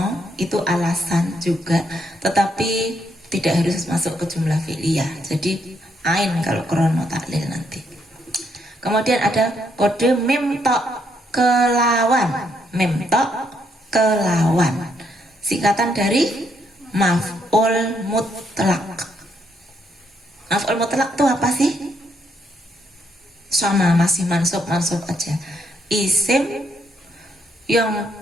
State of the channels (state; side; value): normal; both; correlation 0.74